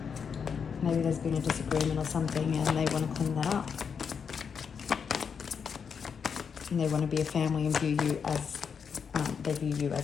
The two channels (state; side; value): quieter; right; 6.5 dB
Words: Maybe there's been a disagreement or something and they want to clean that up. And they want to be a family and view you as, they view you